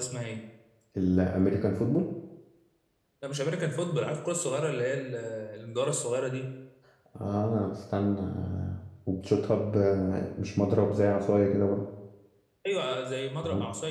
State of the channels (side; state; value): both; identical; correlation 1.00